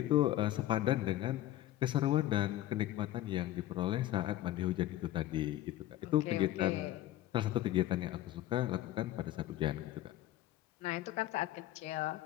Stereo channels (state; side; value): quieter; right; 14.3 dB